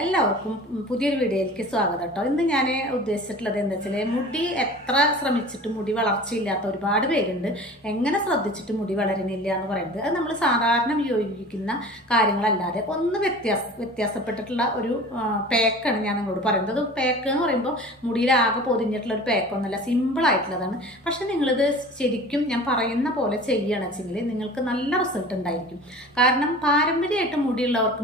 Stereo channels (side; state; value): both; normal; correlation 0.40